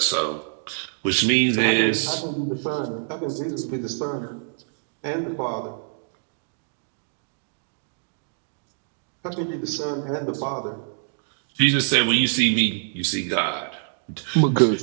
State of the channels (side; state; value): left; silent; digital silence